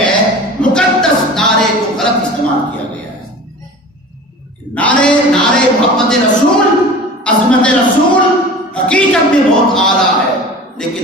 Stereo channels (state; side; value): normal; both; correlation 0.38